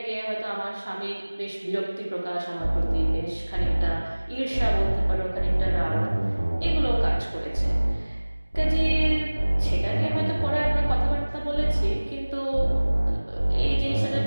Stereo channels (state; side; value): inverted; both; correlation -1.00